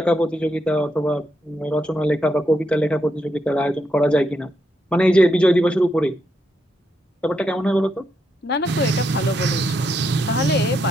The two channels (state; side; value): normal; both; correlation 0.80